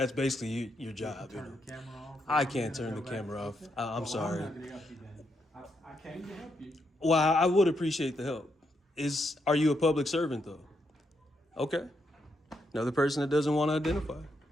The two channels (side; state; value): both; normal; correlation 0.80